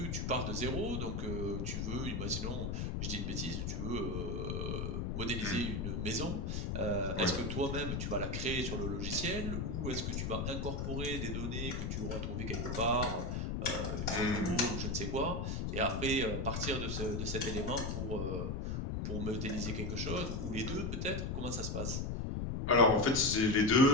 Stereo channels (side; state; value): left; noise; rumble, 1 dB below the sound